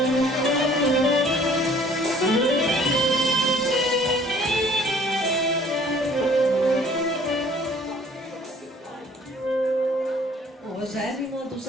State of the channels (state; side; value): normal; both; correlation 0.55